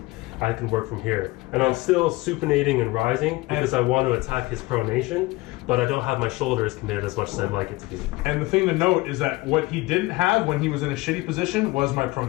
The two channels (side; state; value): right; quieter; 21.5 dB